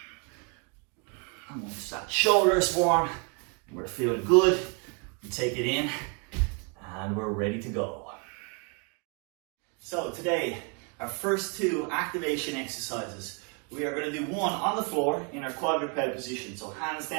And once that shoulder is warm, we're feeling good, we take it in, and we're ready to go. So today, our first 2 activation exercises. We are going to do one on the floor in our quadruped position. So hands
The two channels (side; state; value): left; quieter; 33.4 dB